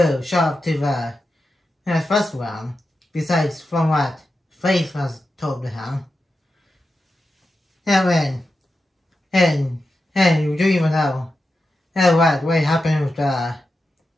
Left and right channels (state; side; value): normal; both; correlation 0.90